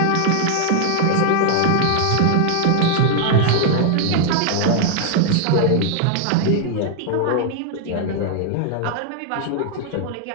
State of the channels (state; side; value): different; both; correlation 0.00